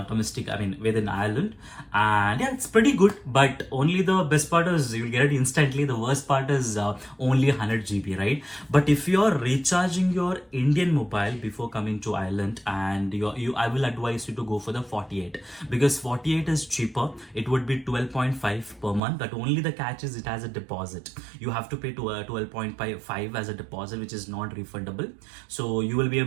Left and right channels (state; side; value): drops out; left; at 19.0 s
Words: domestic, within Ireland. And yeah, it's pretty good, but only the best part is you'll get it instantly. The worst part is only 100 GB, right? But if you're recharging your Indian mobile before coming to Ireland, and I will advise you to go for the 48, because 48 is cheaper. It would be 12.5 per month, but only the catch is it has a deposit. You have to pay to 12.5 as a deposit, which is not refundable. So you will be